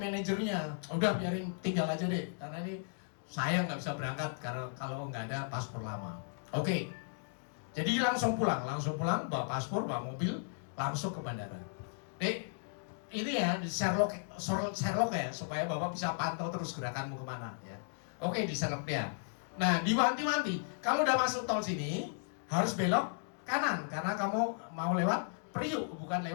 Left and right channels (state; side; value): silent; right; digital silence